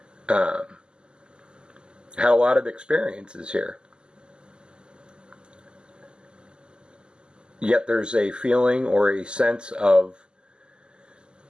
Had a lot of experiences here. Yet there's a feeling or a sense of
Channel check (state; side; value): late; left; 0.048 ms